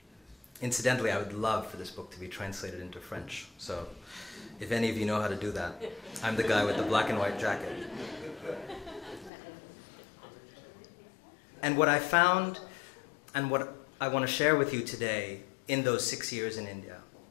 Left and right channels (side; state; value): right; drops out; at 9.3 s